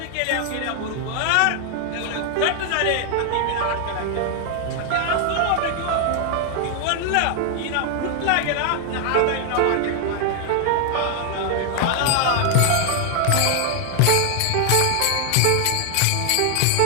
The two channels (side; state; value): both; different; correlation 0.00